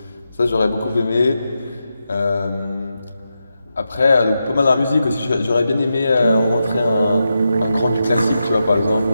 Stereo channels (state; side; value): inverted; both; correlation -0.88